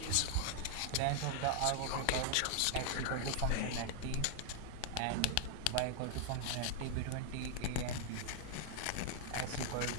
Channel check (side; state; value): both; different; correlation 0.00